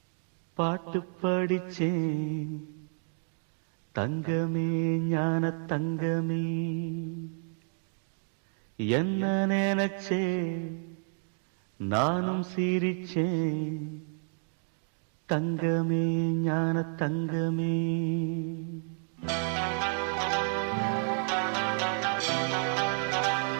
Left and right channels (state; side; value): silent; left; 56 dB below the other